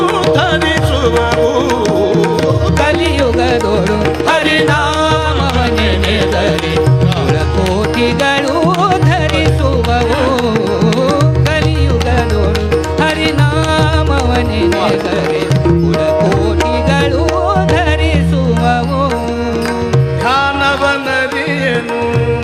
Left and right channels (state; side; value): identical; both; correlation 1.00